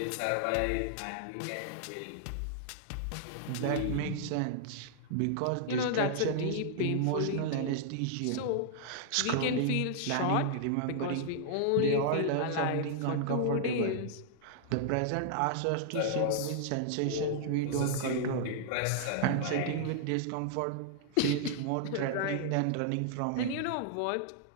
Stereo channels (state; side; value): different; both; correlation -0.01